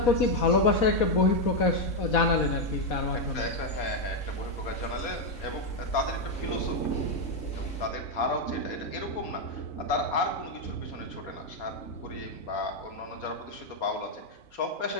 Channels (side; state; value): right; late; 3.9 ms